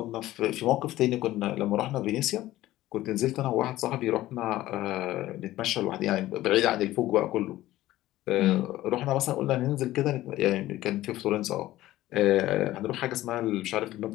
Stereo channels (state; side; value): quieter; right; 15.6 dB